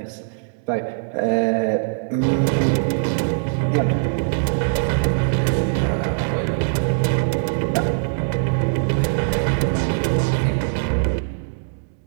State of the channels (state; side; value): silent; left; digital silence